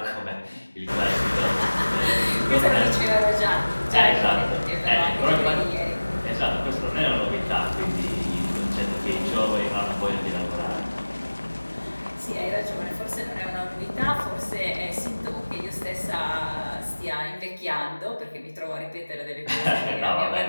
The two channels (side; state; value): both; inverted; correlation -1.00